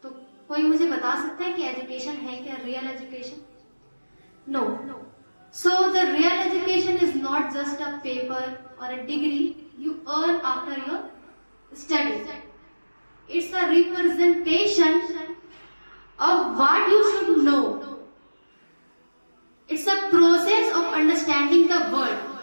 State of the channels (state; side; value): inverted; both; correlation -1.00